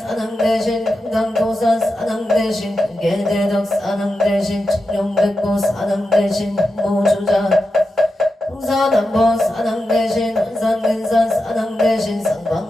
대신 금강도산 사낭 대신 근계대덕 사낭 대신 청룡백고 사낭 대신 모주자 홍사남보 사낭 대신 원산근산 사낭 대신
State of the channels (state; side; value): normal; both; correlation 0.89